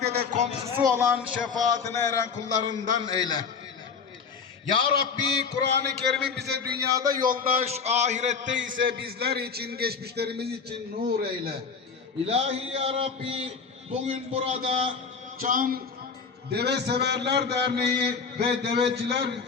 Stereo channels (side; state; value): right; quieter; 5.6 dB